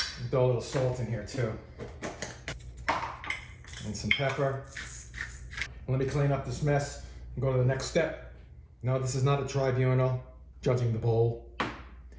Throw a little salt in here too. And some pepper. Let me clean up this mess and go to the next step. No, this is not a tribunal judging the bowl.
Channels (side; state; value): both; identical; correlation 1.00